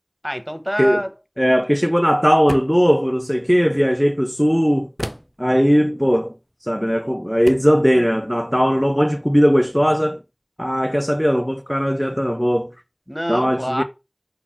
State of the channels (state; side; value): identical; both; correlation 1.00